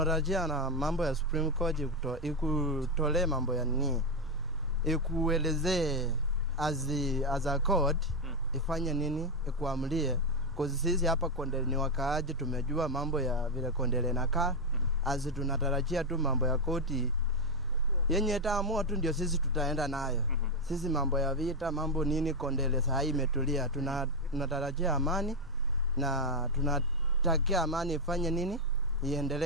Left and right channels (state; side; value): normal; both; correlation 0.05